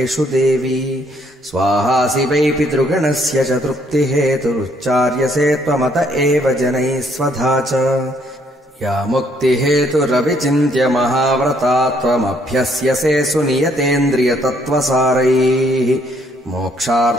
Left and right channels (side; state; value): both; normal; correlation 0.67